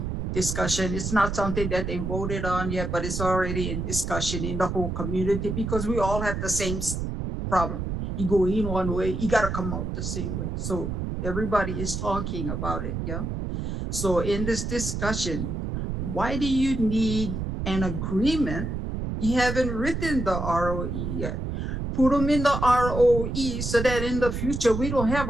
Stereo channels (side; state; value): right; noise; rumble, 3 dB below the sound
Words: discussion. It's not something that they voted on yet, but it's already in discussion in the whole community because we all have the same problem. You go in one way, you gotta come out the same way. So everybody is talking about it, yeah? So in this discussion, why do you need an agreement? You haven't written the ROE yet. Put them in the ROE so that in the future, we don't have